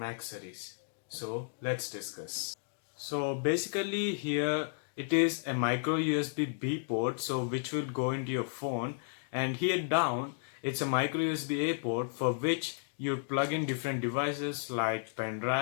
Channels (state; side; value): silent; right; digital silence